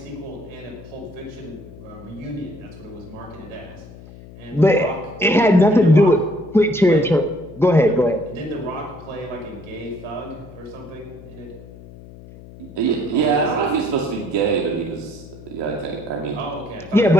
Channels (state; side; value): noise; left; hum, 18 dB below the sound